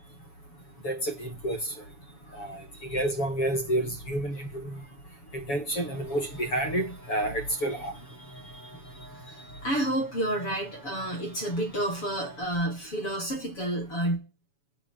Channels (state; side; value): late; right; 7.1 ms